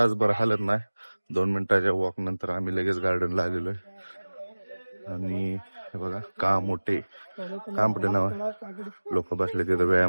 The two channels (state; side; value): inverted; both; correlation -1.00